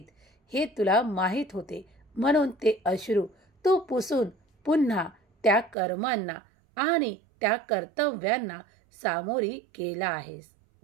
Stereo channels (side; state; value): left; drops out; at 5.8 s